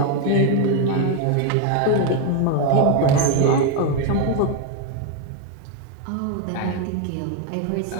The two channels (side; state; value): both; different; correlation 0.01